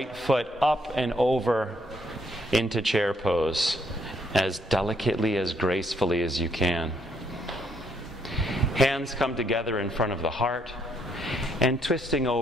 foot up and over into chair pose, as delicately, as gracefully as you can. Hands come together in front of the heart and twisting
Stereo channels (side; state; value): both; normal; correlation 0.71